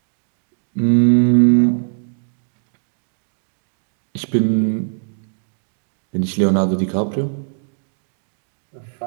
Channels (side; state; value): left; silent; digital silence